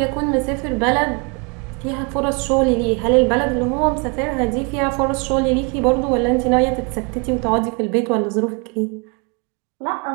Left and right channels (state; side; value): quieter; left; 32.4 dB